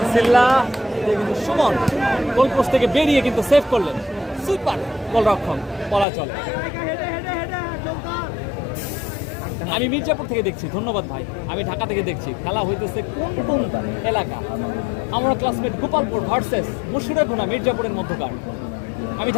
সিল্লা, কিন্তু সুমন গোল পোস্ট থেকে বেরিয়ে কিন্তু সেভ করলেন। সুপার গোলরক্ষক বলা চলে। আমি মির্জাপুর থেকে দেখছি, ধন্যবাদ ভাই। আমি ঢাকা থেকে দেখছি। খেলা হইতেছে কোন কোন এলাকা? আমরা ক্লাসমেট গোপালপুর ভার্সেস মুশিরাগোনা মির্জাপুরের মধ্যকার। আমি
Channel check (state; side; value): drops out; right; at 6.1 s